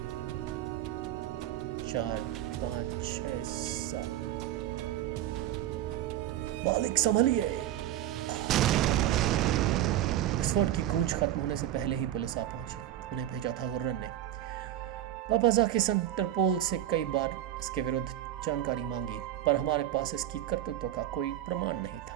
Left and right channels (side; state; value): left; quieter; 12.4 dB